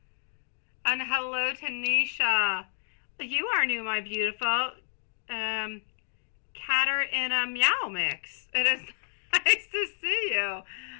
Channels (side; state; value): right; silent; digital silence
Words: And hello, Tanisha. You are new, my beautiful. Catter in a meow mix. It is nice to see you.